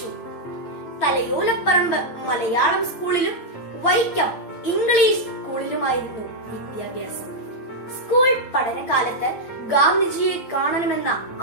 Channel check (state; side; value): late; right; 8.7 ms